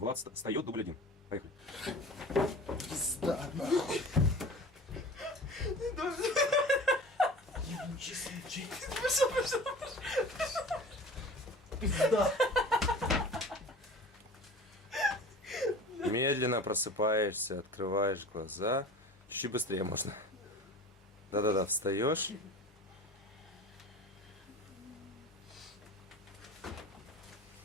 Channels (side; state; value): both; normal; correlation 0.39